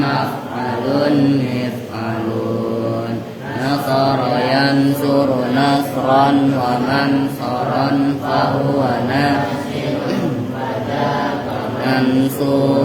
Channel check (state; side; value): identical; both; correlation 1.00